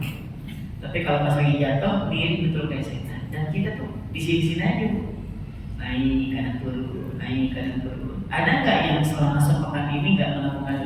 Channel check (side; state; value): both; identical; correlation 1.00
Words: Tapi kalau pas lagi jatuh, mirip betul kayak setan. Dan kita tuh di sini aja, naik kanan turun, naik kanan turun. Ada nggak yang selama sepekan ini nggak melakukan